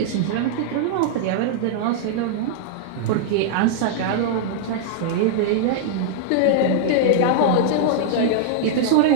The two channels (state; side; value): different; both; correlation -0.01